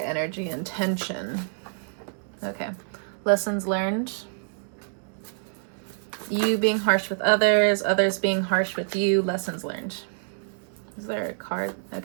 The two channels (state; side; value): silent; left; digital silence